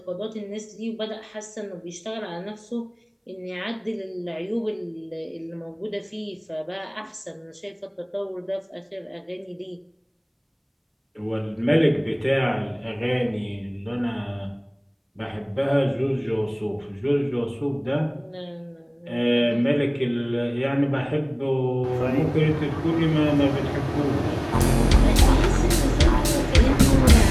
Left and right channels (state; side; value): identical; both; correlation 1.00